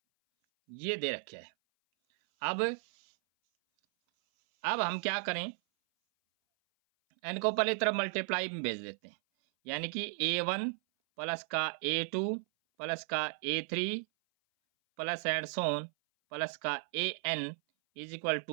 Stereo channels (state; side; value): silent; left; 55 dB below the other